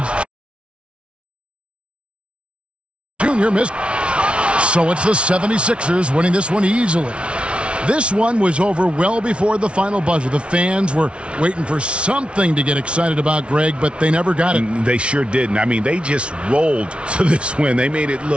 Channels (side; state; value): left; late; 0.059 ms